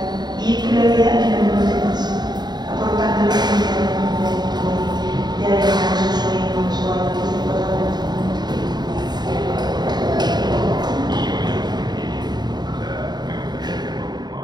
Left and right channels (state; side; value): late; left; 0.20 ms